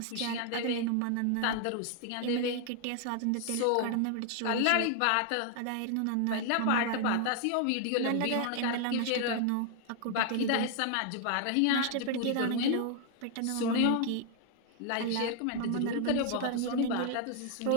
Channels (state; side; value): different; both; correlation 0.00